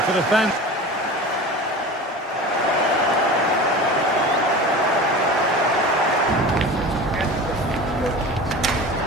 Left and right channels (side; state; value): both; normal; correlation 0.34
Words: for the fans.